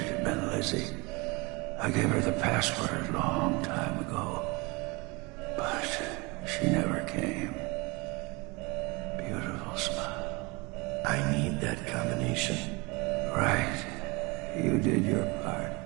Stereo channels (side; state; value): left; quieter; 26.7 dB